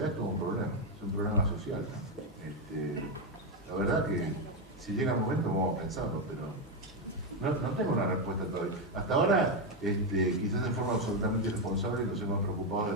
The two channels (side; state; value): both; normal; correlation 0.06